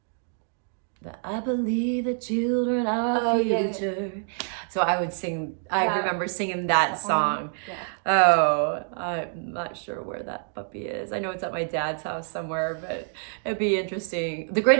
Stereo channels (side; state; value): left; silent; 60 dB below the other